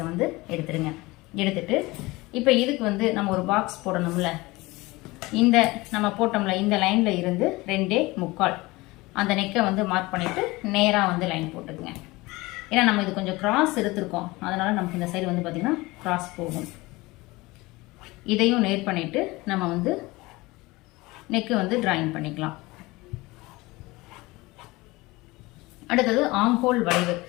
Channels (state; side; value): quieter; right; 21.6 dB